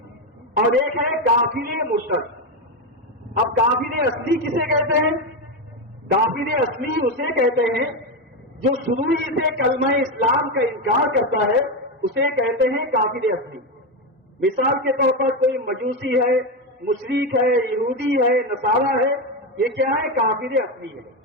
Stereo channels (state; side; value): normal; both; correlation 0.11